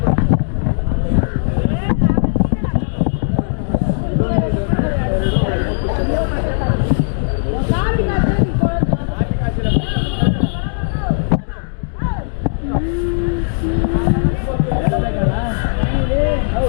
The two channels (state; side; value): silent; right; digital silence